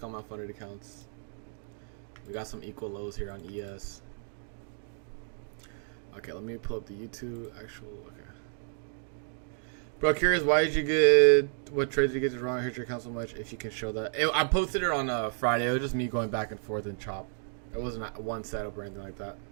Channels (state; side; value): silent; left; 57 dB below the other